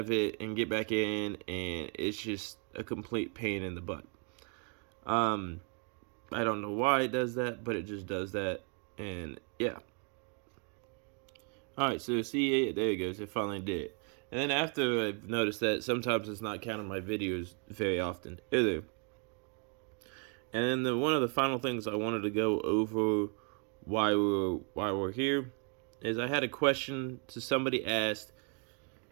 it and get back in, and it's just a complete pain in the butt. I don't know why it does that, but it just does that, and yeah. Alright, so see, there it goes, it finally did it. And then after I've noticed that, sometimes it's not counting my videos very often either. And then one of the final things I wanted to go over why we're here is I had a question to somebody asked,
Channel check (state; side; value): quieter; left; 39.6 dB